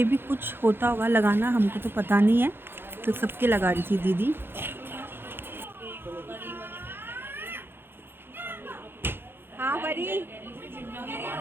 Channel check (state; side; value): late; left; 0.10 ms